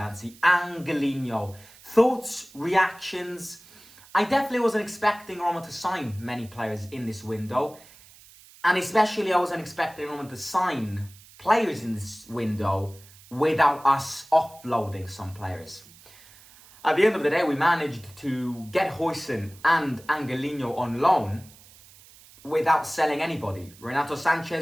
Angelino. Thoughts, reactions. I definitely wasn't expecting Roma to sign many players in this window. And especially I wasn't expecting Roma to sign players in this window without us offloading some players. At the end of the day, we managed to get Huijsen and Angelino on loan without selling anybody. Renato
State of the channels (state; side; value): noise; right; hiss, 23 dB below the sound